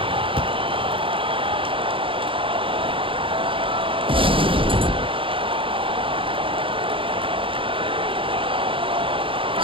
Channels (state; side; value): late; left; 0.25 ms